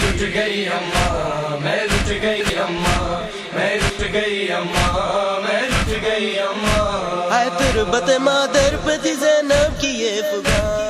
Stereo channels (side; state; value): both; identical; correlation 1.00